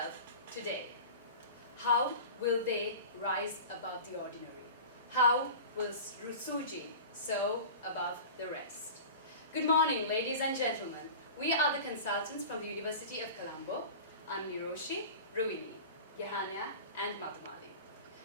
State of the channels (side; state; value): both; inverted; correlation -0.35